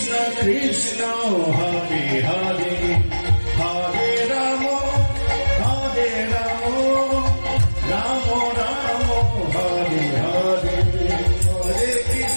কৃষ্ণ হরে হরে, হরে রাম রাম রাম হরে হরে, হরে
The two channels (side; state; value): both; inverted; correlation -1.00